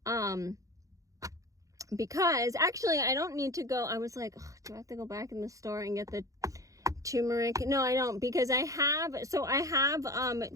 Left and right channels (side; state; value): left; late; 0.16 ms